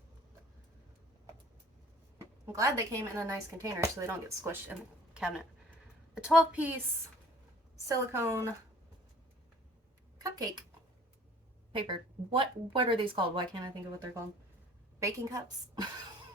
I'm glad they came in a nice container so they don't get squished in the cabinet. A 12-piece silicone cupcake paper. What are these called? Why can't I think of what they're called? Baking cups.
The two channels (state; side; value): normal; both; correlation 0.52